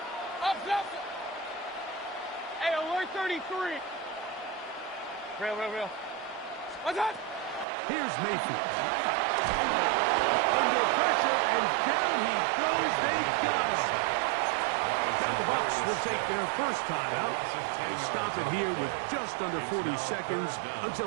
Up. Hey, alert 33! Real. What's that? Here's Mayfield. Under pressure, and down he goes. They got him. Now the Bucs will take their first time out and stop it here with just under 40 seconds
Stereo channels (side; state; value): left; drops out; at 7.7 s